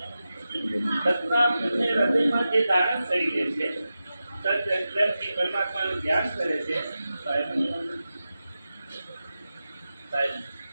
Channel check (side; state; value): both; inverted; correlation -0.92